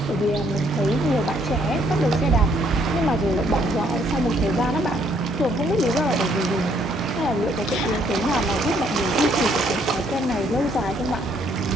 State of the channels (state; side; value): normal; both; correlation 0.68